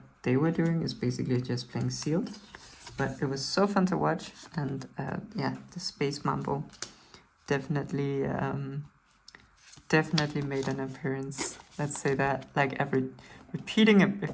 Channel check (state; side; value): identical; both; correlation 1.00